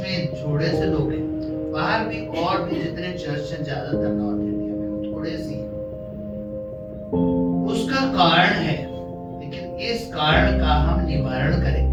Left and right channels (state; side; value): identical; both; correlation 1.00